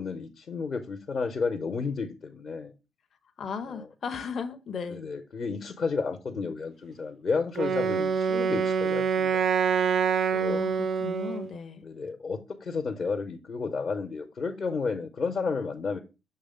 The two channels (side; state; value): both; normal; correlation 0.73